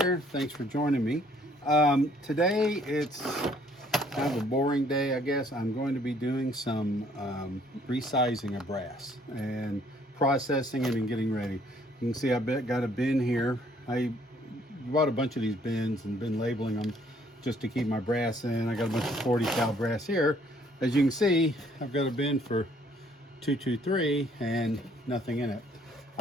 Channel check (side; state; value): both; normal; correlation 0.63